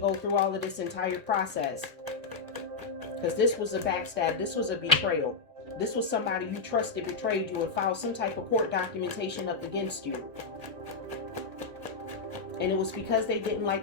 through all of this entire process. Because this was a backstab. This was a betrayal. This was somebody you trusted betrayed you and filed some type of court documentation up against you. And it was because they didn't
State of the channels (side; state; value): right; quieter; 4.5 dB